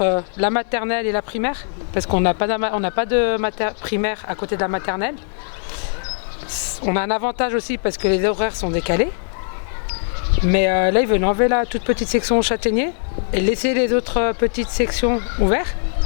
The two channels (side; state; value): right; silent; digital silence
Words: la maternelle et la primaire, parce qu'on n'a pas de primaire à côté de la maternelle. On a un avantage aussi parce que les horaires sont décalés. Mais là, ils veulent enlever la toute petite section châtaignier et laisser les autres petites sections ouvertes.